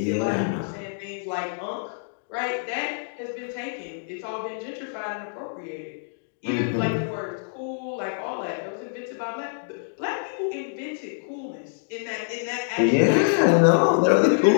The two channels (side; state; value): right; silent; digital silence